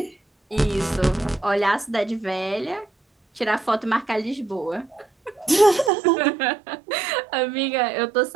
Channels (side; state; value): left; drops out; at 5.9 s